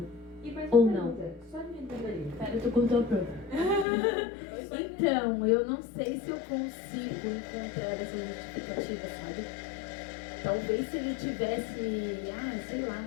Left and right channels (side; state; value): right; drops out; at 3.9 s